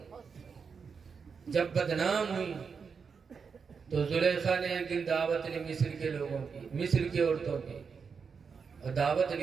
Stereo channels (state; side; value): quieter; left; 5.8 dB